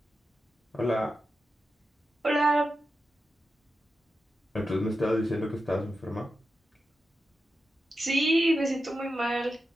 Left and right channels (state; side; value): normal; both; correlation 0.90